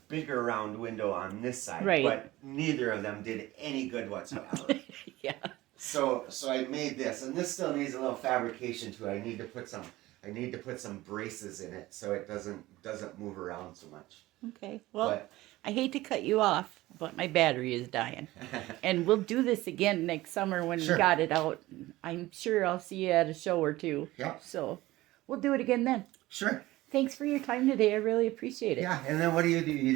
bigger round window on this side. Right. But neither of them did any good whatsoever. Yeah. So I made this, and this still needs a little fabrication too. I need to put some braces in it so it doesn't move around so much. Okay. Well, I hate to cut you off, but my battery is dying. And we'll do this again next summer when we got it out. I'm sure I'll see you at a show or two. Yeah. So we'll do it again then. Sure. Thanks for your time today. I really appreciate it. Yeah, and then what do? You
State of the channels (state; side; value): quieter; left; 17.8 dB